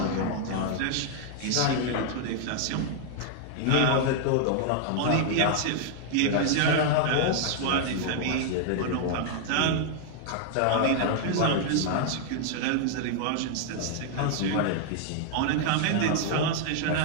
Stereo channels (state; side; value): different; both; correlation 0.00